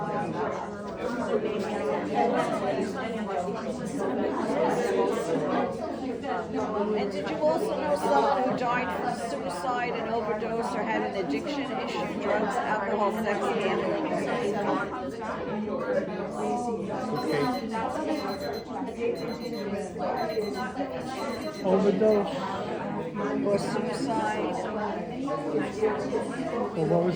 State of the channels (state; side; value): identical; both; correlation 1.00